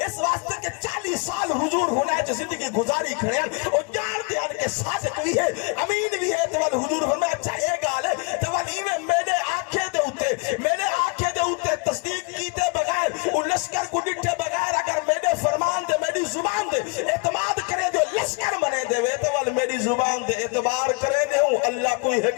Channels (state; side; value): quieter; right; 31.1 dB